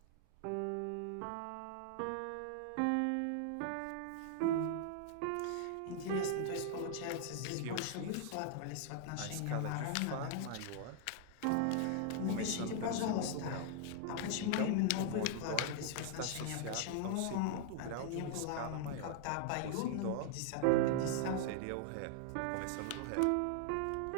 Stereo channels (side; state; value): both; different; correlation 0.00